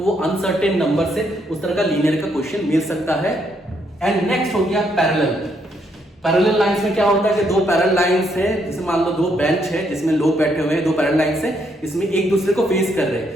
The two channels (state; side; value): normal; both; correlation 0.74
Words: वो अनसर्टेन नंबर से उस तरह का लीनियर का क्वेश्चन मिल सकता है। एंड नेक्स्ट हो गया पैरेलल। पैरेलल लाइंस में क्या होता है कि 2 पैरेलल लाइंस है, जैसे मान लो 2 बेंच है जिसमें लोग बैठे हुए हैं, 2 पैरेलल लाइंस है, इसमें एक दूसरे को फेस कर रहे